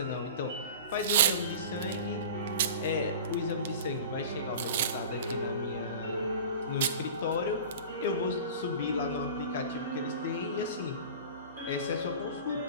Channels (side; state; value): both; inverted; correlation -0.36